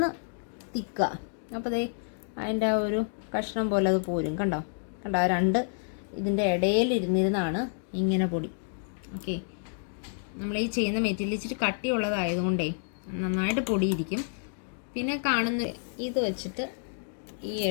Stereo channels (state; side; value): silent; right; digital silence